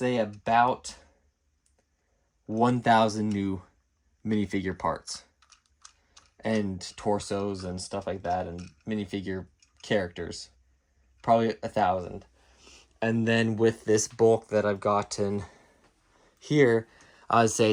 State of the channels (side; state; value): both; identical; correlation 1.00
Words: about 1,000 new minifigure parts and torsos and stuff like that, and minifigure characters, probably 1,000. And then with this bulk that I've gotten here, I would say